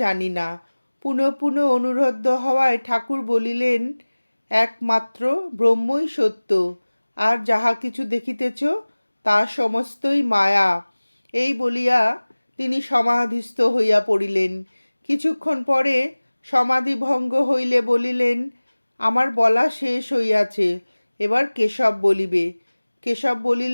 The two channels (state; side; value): inverted; both; correlation -1.00